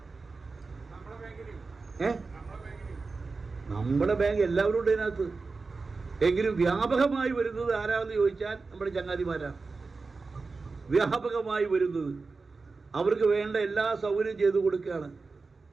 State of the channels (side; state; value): left; quieter; 4.1 dB